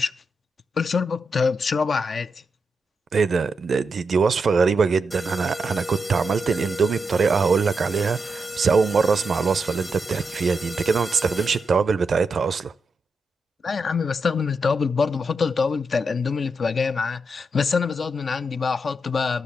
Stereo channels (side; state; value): both; normal; correlation 0.85